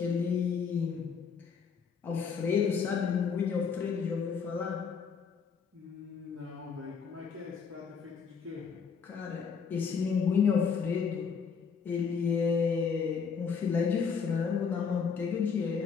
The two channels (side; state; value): right; quieter; 6.1 dB